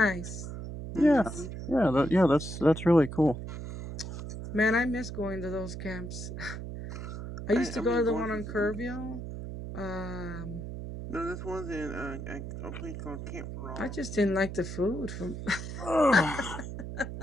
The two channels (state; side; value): noise; right; hum, 8 dB below the sound